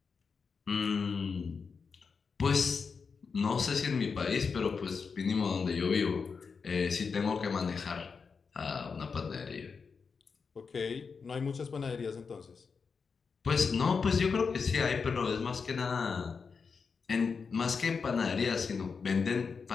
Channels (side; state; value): right; quieter; 5.4 dB